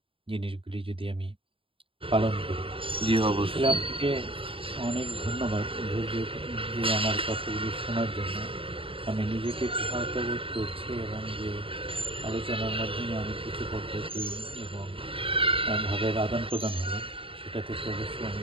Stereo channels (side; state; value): left; late; 0.26 ms